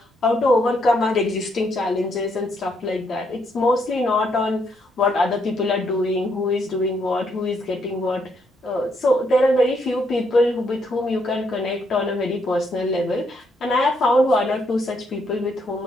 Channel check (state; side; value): normal; both; correlation 0.74